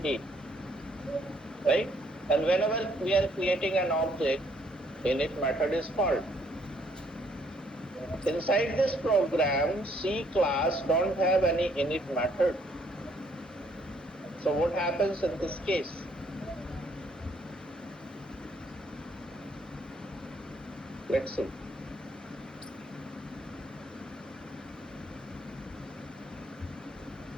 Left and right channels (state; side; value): normal; both; correlation 0.67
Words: A, right? And whenever we are creating an object, init method is called. Inside this program, C class don't have any init method. So what happens in this case? Let's see.